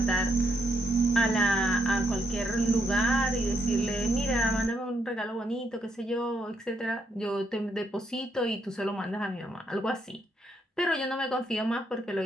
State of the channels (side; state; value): both; normal; correlation 0.77